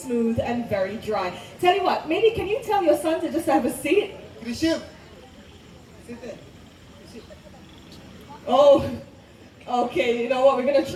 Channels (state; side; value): identical; both; correlation 1.00